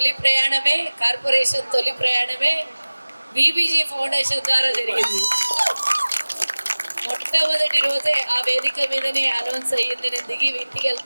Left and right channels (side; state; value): both; inverted; correlation -1.00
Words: ప్రయాణమే, కార్పొరేషన్ తొలి ప్రయాణమే బీబీజీ ఫౌండేషన్ ద్వారా జరిగింది. మొట్టమొదటి రోజే ఆ వేదిక మీదనే అనౌన్స్ అయ్యింది. నేను దిగి ఇంటికి